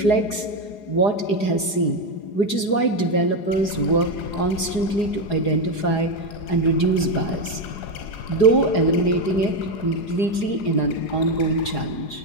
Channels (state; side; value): late; right; 4.8 ms